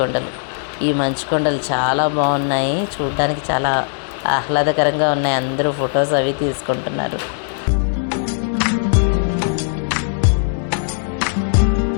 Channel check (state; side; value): silent; right; digital silence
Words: ఈ మంచుకొండలు చాలా బాగున్నాయి, చూడడానికి చాలా ఆహ్లాదకరంగా ఉన్నాయి. అందరూ ఫొటోస్ అవి తీసుకుంటున్నారు.